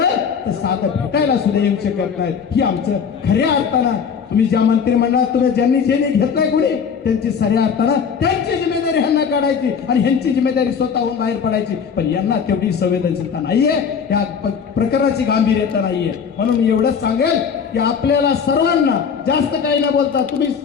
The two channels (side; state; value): right; quieter; 6.7 dB